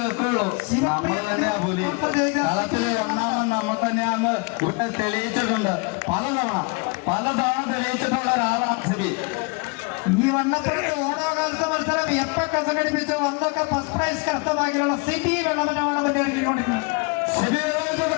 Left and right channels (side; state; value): right; quieter; 29.8 dB